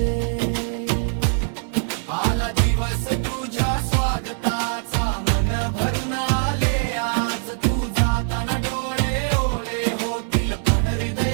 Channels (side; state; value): left; silent; 64 dB below the other